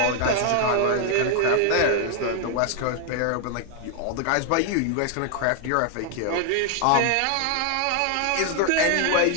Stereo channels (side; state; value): both; different; correlation 0.00